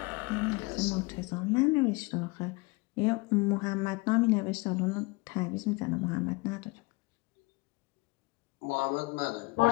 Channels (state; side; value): quieter; right; 25.5 dB